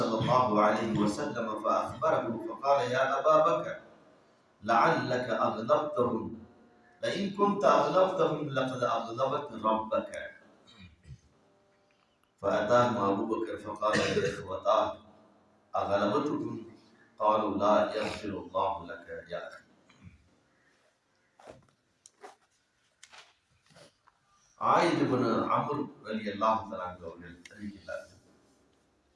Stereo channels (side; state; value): both; identical; correlation 1.00